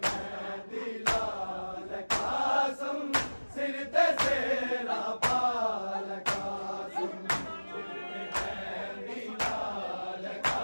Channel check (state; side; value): inverted; both; correlation -1.00